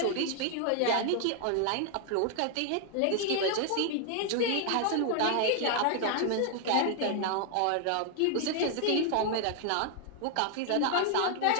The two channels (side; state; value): both; different; correlation 0.00